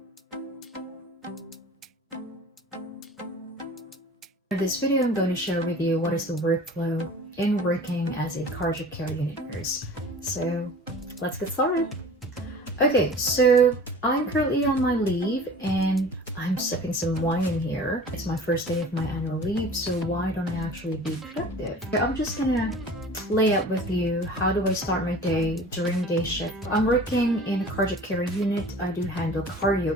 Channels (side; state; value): both; normal; correlation 0.42